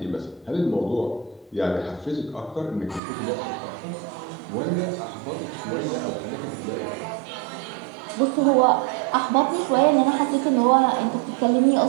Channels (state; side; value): drops out; left; at 3.0 s